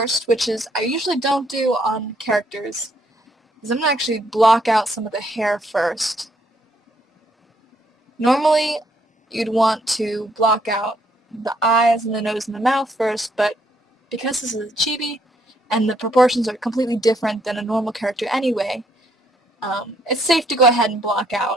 which is I usually don't do on characters, is I'm going to actually block out some of the hair first. Normally, you'd want to block out the eyes and the nose and the mouth first, but because this is a chibi and the proportions are completely different than a normal character anyway, it's safe to go ahead and block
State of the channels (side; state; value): both; normal; correlation 0.71